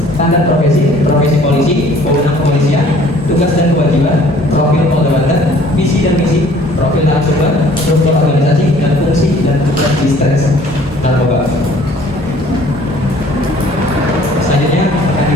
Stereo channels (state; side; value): normal; both; correlation 0.54